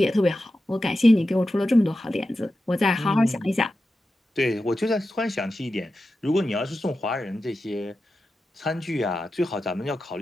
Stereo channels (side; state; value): both; normal; correlation 0.91